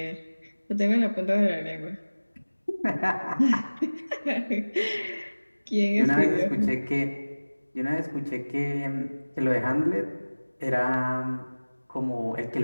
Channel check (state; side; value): inverted; both; correlation -1.00